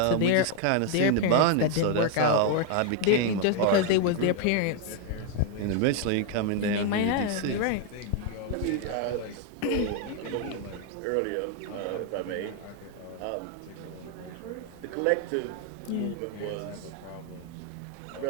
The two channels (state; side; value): different; both; correlation 0.01